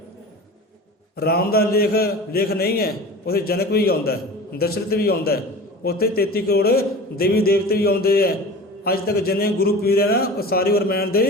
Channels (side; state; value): both; normal; correlation 0.36